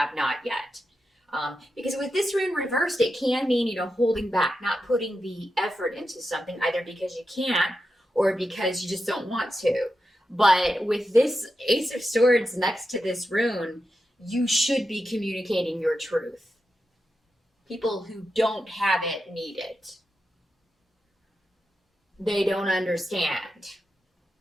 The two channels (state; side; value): normal; both; correlation 0.89